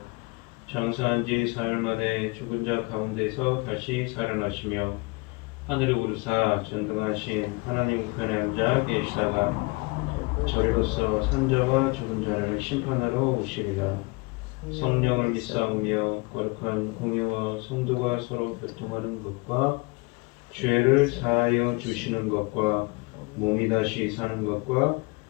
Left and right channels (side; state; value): right; quieter; 26.9 dB